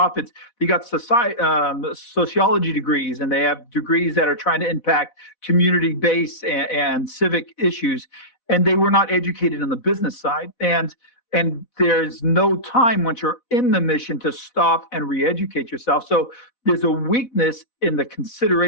they got sociology degrees, and they have degrees that are trying to impact community-based and civic issues, and they were not educated on the business side. And there's no time once you're in the mission to stop and re-educate yourself. So there's a weakness in the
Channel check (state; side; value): late; right; 4.1 ms